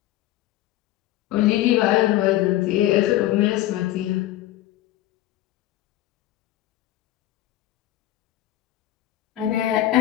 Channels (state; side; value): quieter; right; 14.6 dB